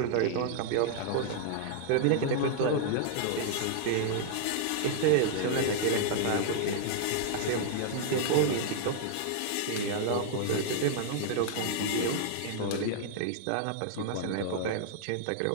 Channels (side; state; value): both; different; correlation -0.01